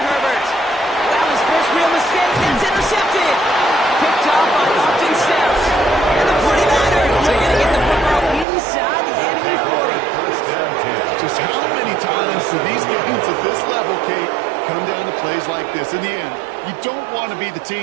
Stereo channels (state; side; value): drops out; left; at 8.5 s